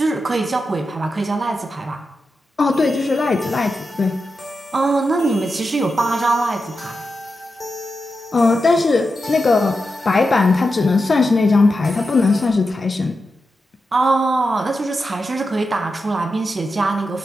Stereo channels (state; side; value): normal; both; correlation 0.89